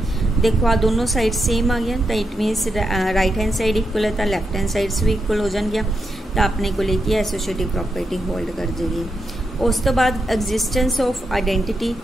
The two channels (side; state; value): both; normal; correlation 0.84